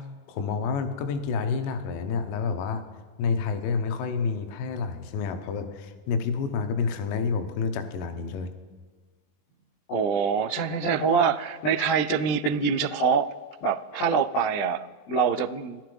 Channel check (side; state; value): right; late; 20 ms